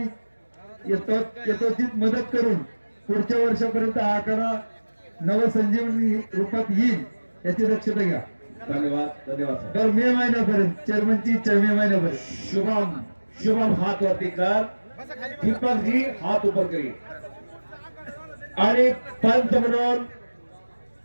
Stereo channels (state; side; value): inverted; both; correlation -1.00